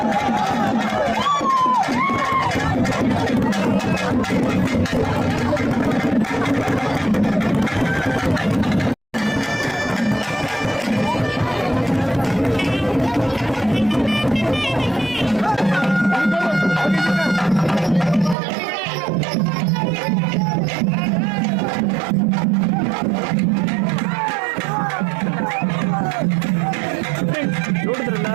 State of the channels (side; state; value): left; drops out; at 18.4 s